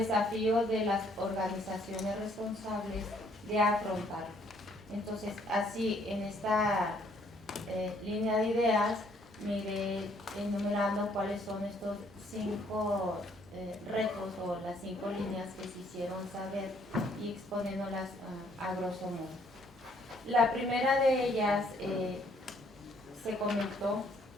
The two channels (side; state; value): both; normal; correlation 0.65